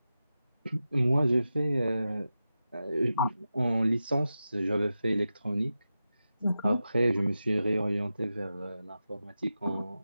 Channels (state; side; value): inverted; both; correlation -0.91